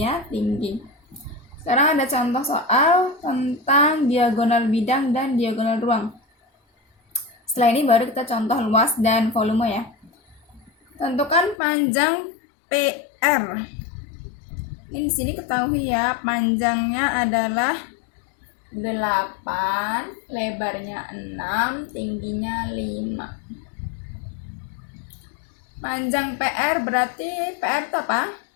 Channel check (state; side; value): drops out; right; at 11.6 s